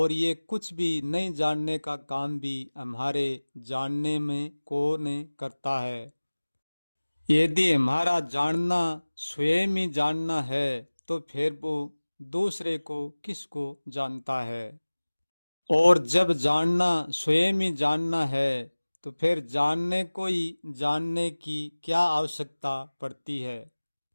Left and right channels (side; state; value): both; inverted; correlation -1.00